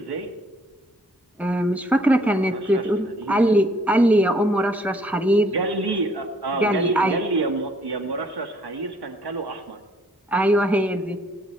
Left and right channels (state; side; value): normal; both; correlation 0.64